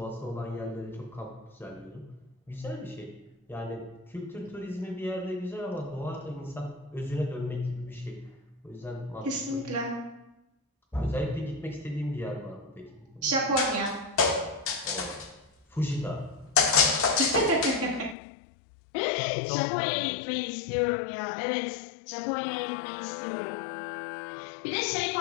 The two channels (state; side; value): drops out; right; at 18.2 s